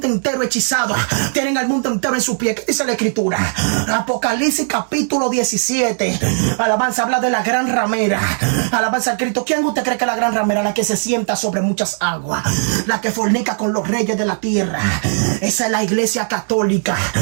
entero hechizado. Tienen al mundo entero en su pie. ¿Qué dice la escritura? Apocalipsis capítulo 17. Alabanza habla de la gran ramera. Alabanza al Cristo. ¿Quién usted cree que es la gran ramera? La que se sienta sobre muchas aguas. La que fornica con los reyes de la tierra. Esa es la iglesia católica.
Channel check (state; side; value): silent; left; digital silence